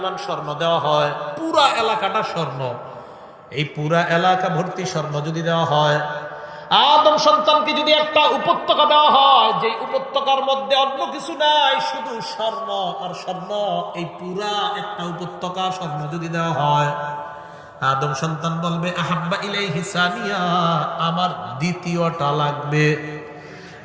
স্বর্ণ দেওয়া হয়, পুরা এলাকাটা স্বর্ণ, এই পুরা এলাকা ভর্তি স্বর্ণ যদি দেওয়া হয়, আদম সন্তানকে যদি একটা উপত্যকা দেওয়া হয়, যে উপত্যকার মধ্যে অন্য কিছু নাই, শুধু স্বর্ণ আর স্বর্ণ, এই পুরা একটা উপত্যকা স্বর্ণ যদি দেওয়া হয়, আদম সন্তান বলবে আহাব্বা ইলাইহি সানিয়া, আমার দ্বিতীয়টা লাগবে।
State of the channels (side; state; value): both; identical; correlation 1.00